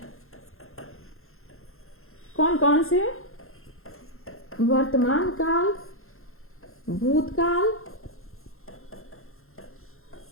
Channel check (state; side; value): late; right; 0.62 ms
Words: कौन कौन से? वर्तमान काल, भूतकाल,